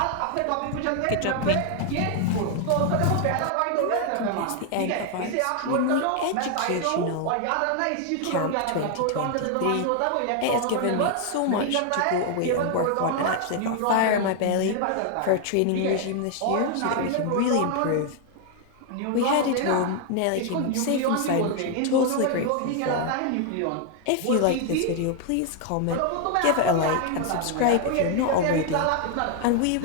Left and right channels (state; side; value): different; both; correlation 0.00